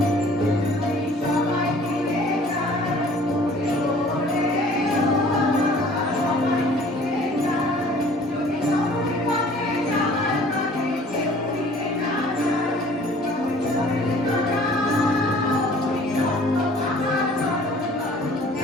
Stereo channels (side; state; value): both; normal; correlation 0.51